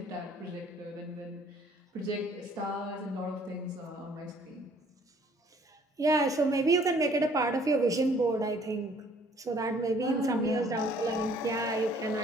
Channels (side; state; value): both; normal; correlation 0.59